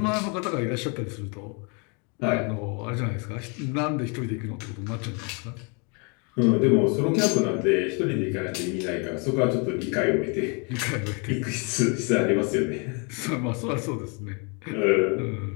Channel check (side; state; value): right; quieter; 34.2 dB